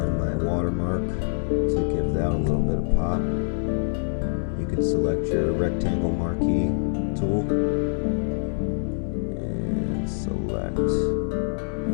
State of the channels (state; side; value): silent; right; digital silence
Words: my watermark to give that a little bit of pop. You can select your rectangle marquee tool and select